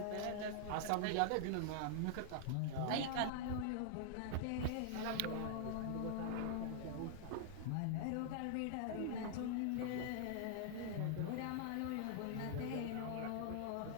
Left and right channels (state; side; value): different; both; correlation -0.01